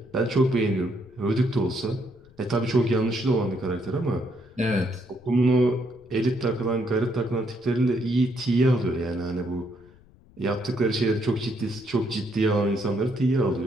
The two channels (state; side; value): noise; left; rumble, 26 dB below the sound